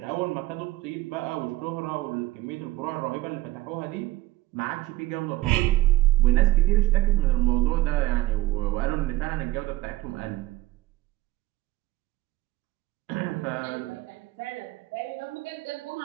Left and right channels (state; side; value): quieter; left; 16.9 dB